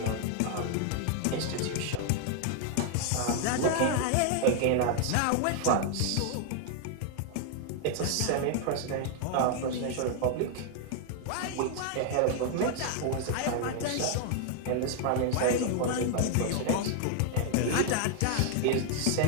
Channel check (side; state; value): both; different; correlation 0.00